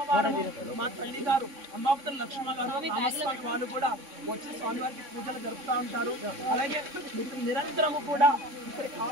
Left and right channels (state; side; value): late; left; 3.6 ms